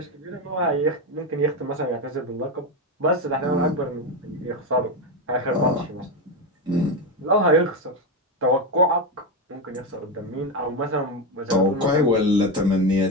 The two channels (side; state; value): both; normal; correlation 0.13